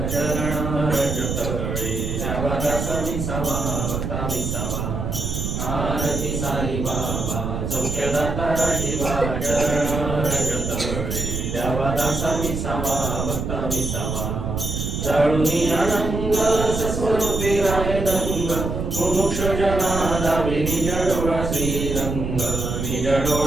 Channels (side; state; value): right; noise; rumble, 3 dB below the sound